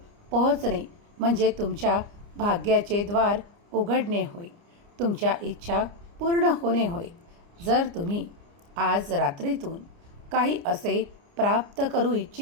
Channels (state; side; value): late; left; 29 ms